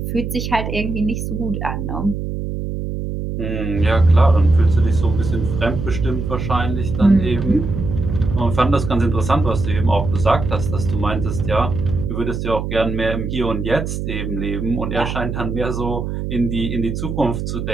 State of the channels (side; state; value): right; noise; hum, 4 dB below the sound